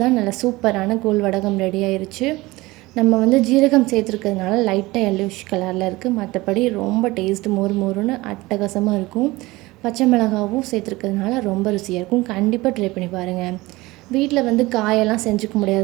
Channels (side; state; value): left; quieter; 20.6 dB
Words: நல்ல சூப்பரான கூழ் வடகம் ரெடி ஆயிடுச்சு. நம்ம வந்து ஜீரகம் சேர்த்துருக்கிறதுனால லைட்டாக எல்லோஷ் கலரில் இருக்குது. மற்றபடி ரொம்ப டேஸ்ட் மொறு மொறுன்னு அட்டகாசமாக இருக்கும். பச்சை மிளகாவும் சேர்த்துருக்கிறதுனால ரொம்ப ருசியாக இருக்கும். கண்டிப்பாக ட்ரை பண்ணி பாருங்கள். வீட்டில் வந்து காயெல்லாம் செஞ்சுக்க